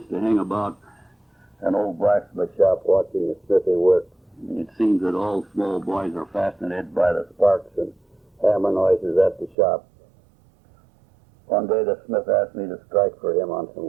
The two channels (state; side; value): drops out; left; at 9.6 s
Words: to hang about an old blacksmith shop watching the smithy work. It seems that all small boys are fascinated by the sparks and hammer noises at the shop. One day the smith asked me to strike for him on some